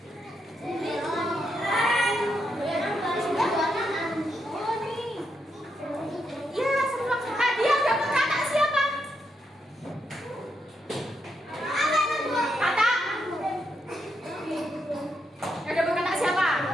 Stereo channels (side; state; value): both; normal; correlation 0.81